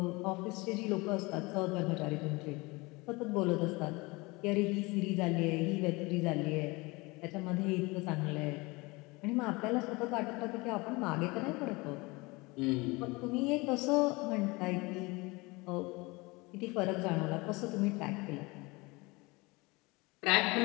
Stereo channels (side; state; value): right; quieter; 24.6 dB